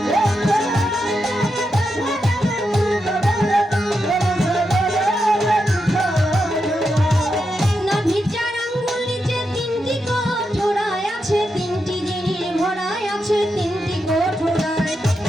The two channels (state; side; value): normal; both; correlation 0.86